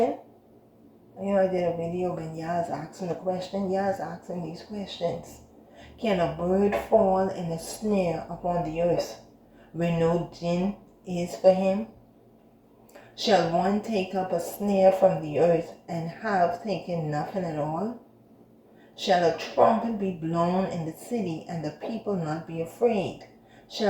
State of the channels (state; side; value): identical; both; correlation 1.00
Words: I did a video when Yah's asking the question. Yah's asking these questions. Can a bird fall in a snare upon the earth where no gin is for him? Shall one take up a snare from the earth and have taken nothing at all? Shall a trumpet be blown in the city and the people not be afraid?